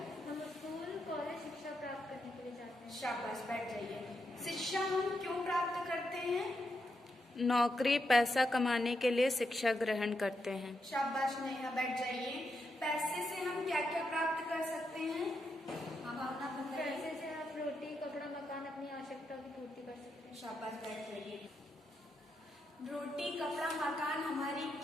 हम स्कूल कॉलेज शिक्षा प्राप्त करने के लिए जाते हैं। शाबाश, बैठ जाइए। शिक्षा हम क्यों प्राप्त करते हैं? नौकरी पैसा कमाने के लिए शिक्षा ग्रहण करते हैं। शाबाश नेहा, बैठ जाइए। पैसे से हम क्या क्या प्राप्त कर सकते हैं? हाँ भावना, पैसे से हम रोटी कपड़ा मकान अपनी आवश्यकता की पूर्ति कर सकते हैं। शाबाश, बैठ जाइए। रोटी कपड़ा मकान हमारी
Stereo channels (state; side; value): normal; both; correlation 0.83